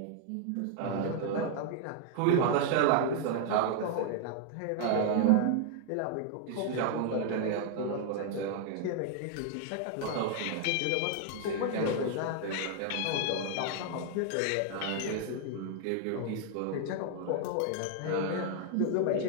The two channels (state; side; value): different; both; correlation 0.00